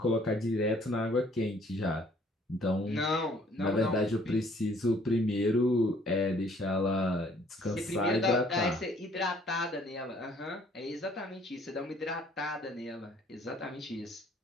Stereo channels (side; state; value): both; normal; correlation 0.60